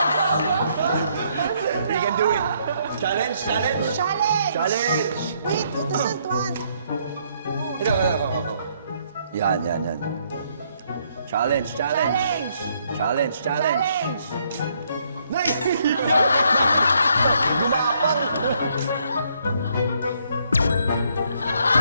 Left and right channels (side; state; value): both; inverted; correlation -0.70